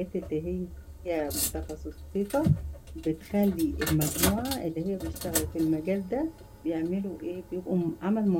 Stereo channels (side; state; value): both; identical; correlation 1.00